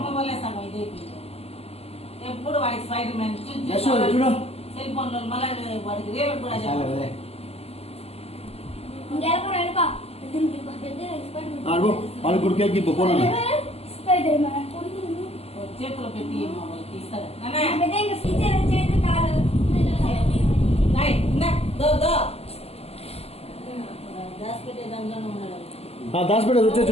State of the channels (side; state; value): right; late; 0.29 ms